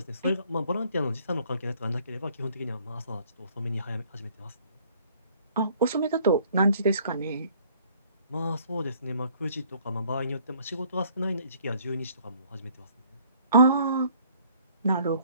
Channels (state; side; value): inverted; both; correlation -0.59